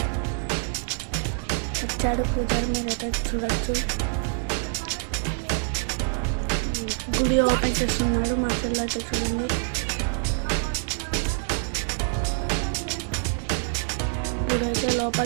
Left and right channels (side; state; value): left; silent; 58 dB below the other